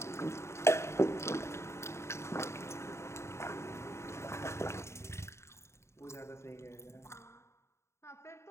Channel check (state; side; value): late; right; 0.13 ms